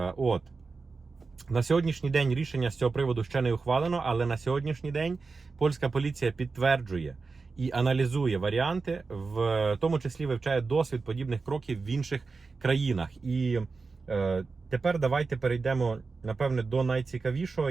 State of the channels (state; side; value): quieter; left; 4.3 dB